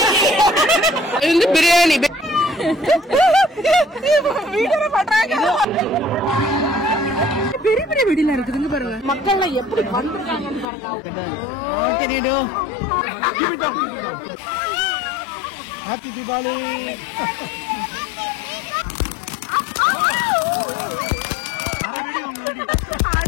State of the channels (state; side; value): drops out; right; at 10.7 s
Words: பிரியாணி வீடியோ பண்றாங்க. பெரிய பெரிய வெடிலாம் இருக்குதுங்க பாருங்க. மக்கள் எப்படி பண்றாங்கன்னு பாருங்க. ஹாப்பி தீபாவளி.